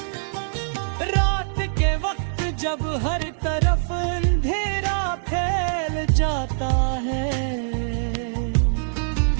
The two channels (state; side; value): silent; left; digital silence